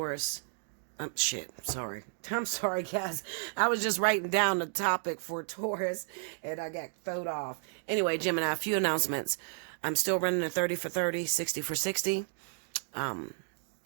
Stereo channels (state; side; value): silent; left; 56 dB below the other